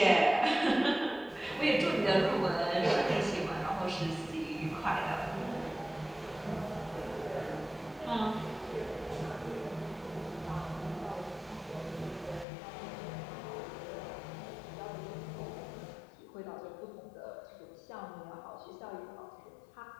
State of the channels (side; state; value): right; drops out; at 12.5 s